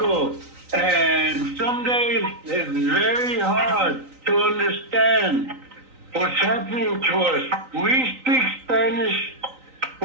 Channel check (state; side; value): late; left; 3.9 ms